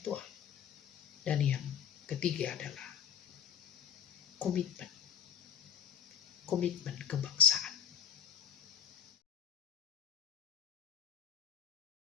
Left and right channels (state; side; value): quieter; right; 8.2 dB